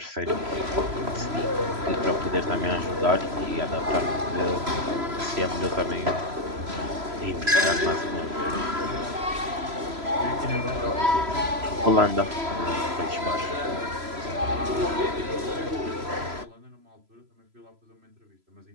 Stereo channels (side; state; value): left; late; 3.0 ms